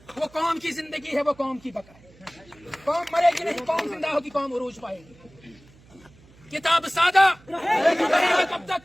وہ قوم کی زندگی ہے, وہ قوم کی بقا ہے. قوم مرے گی نہیں, قوم زندہ ہوگی, قوم عروج پائے گی. کتاب سادہ کب تک,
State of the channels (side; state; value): right; noise; hum, 26 dB below the sound